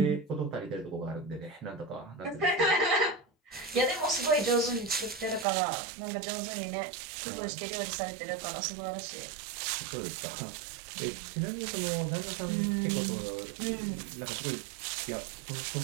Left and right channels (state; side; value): drops out; left; at 5.5 s